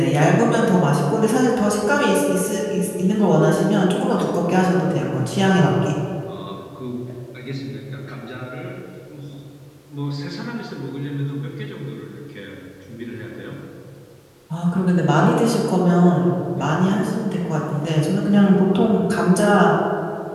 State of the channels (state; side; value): identical; both; correlation 1.00